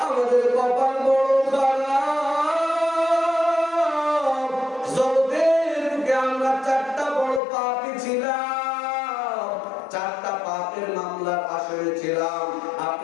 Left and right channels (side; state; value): right; drops out; at 7.4 s